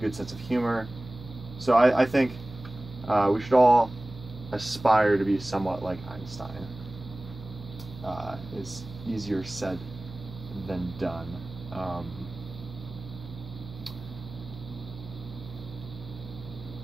sense of humor. So I think we should all aspire to be somewhat like Einstein. It's easier said than done.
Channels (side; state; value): right; noise; hum, 14 dB below the sound